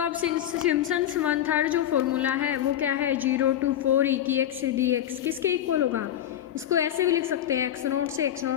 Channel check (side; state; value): right; quieter; 11.2 dB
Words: अब सिम्पसन्स 1/3 जो फॉर्मूला है वो क्या है 0 to 4 e की एक्स डी एक्स किसके इक्वल होगा, इसको ऐसे भी लिख सकते हैं x0 से